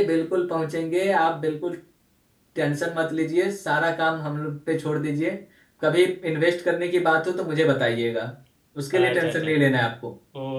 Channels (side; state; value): both; identical; correlation 1.00